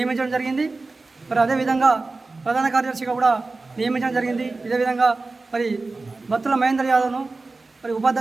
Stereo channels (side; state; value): left; quieter; 3.6 dB